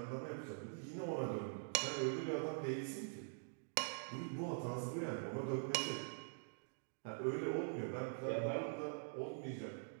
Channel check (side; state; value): left; silent; digital silence